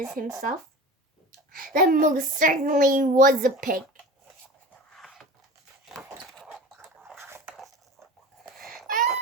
himself. That most certainly was a pig.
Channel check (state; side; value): normal; both; correlation 0.35